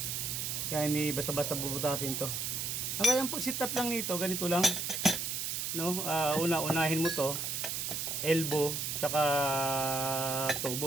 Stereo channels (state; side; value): noise; right; hiss, 2 dB below the sound